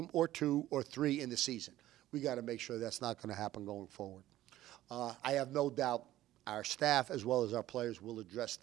or 2 or 3 in the season. We got to make sure that's not going to happen going forward. I have no doubt our staff as well as our players will address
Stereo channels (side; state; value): left; quieter; 14.5 dB